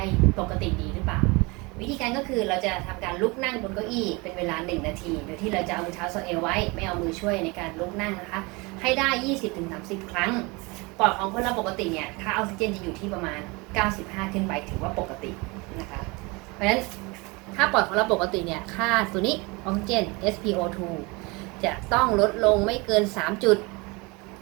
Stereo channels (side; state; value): left; quieter; 26.4 dB